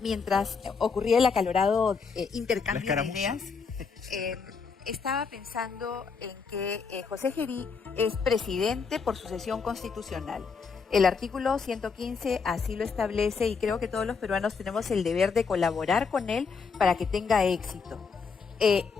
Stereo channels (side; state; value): right; quieter; 5.3 dB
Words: ocurría el acalorado intercambio de ideas, estaba pensando en que José Gerí es presidente por sucesión constitucional. El artículo 115 así lo establece y creo que todos los peruanos tenemos el deber de colaborar con él para que tenga éxito.